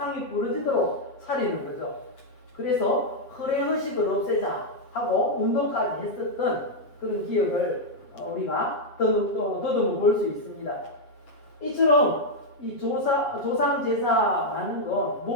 부러지도록 차리는 거죠. 그래서 허례의식을 없애자 하고 운동까지 했었던 그런 기억을 우리가 더듬어 볼 수 있습니다. 이처럼 이 조상 제사라는 건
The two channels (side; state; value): right; late; 7.7 ms